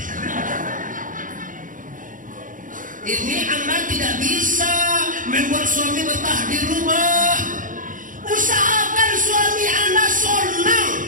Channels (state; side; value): late; left; 0.38 ms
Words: Ini anda tidak bisa membuat suami betah di rumah. Usahakan suami anda senang,